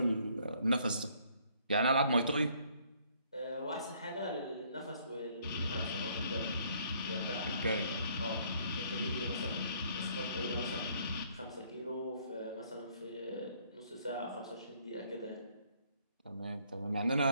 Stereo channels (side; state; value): both; inverted; correlation -0.64